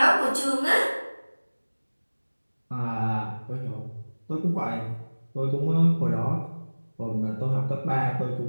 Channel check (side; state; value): both; inverted; correlation -1.00